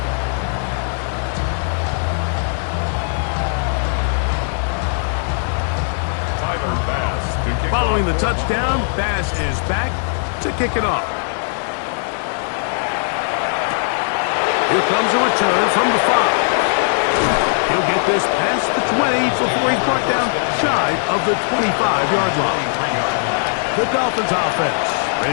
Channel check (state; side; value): silent; right; 58 dB below the other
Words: Following the touchdown, Bass is back to kick it off. Here comes a return from the 5. He'll get this past the 20 before he's brought down shy of the 25-yard line. The Dolphins offense